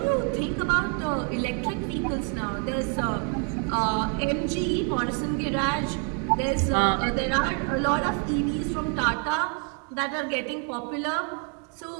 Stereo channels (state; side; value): quieter; left; 37.4 dB